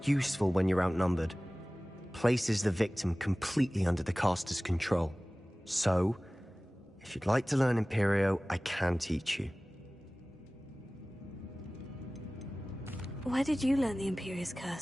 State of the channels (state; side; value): normal; both; correlation 0.98